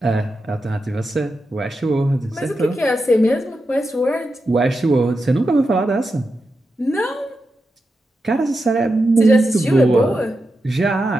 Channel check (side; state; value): both; normal; correlation 0.89